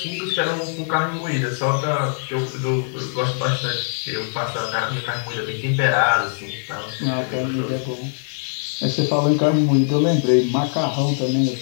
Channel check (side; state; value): right; silent; 56 dB below the other